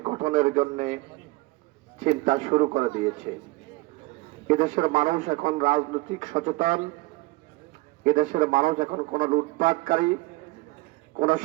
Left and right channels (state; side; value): quieter; left; 22.5 dB